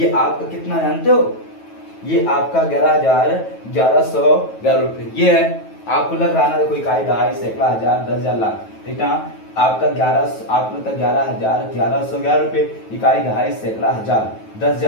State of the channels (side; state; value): right; late; 9.2 ms